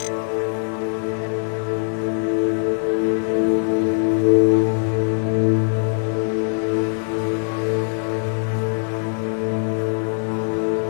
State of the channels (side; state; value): right; silent; digital silence